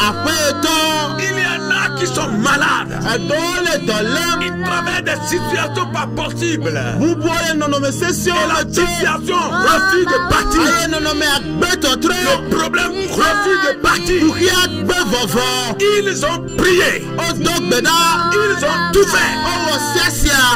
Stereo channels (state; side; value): identical; both; correlation 1.00